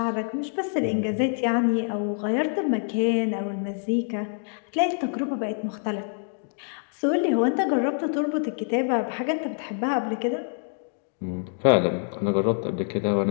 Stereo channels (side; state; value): right; silent; digital silence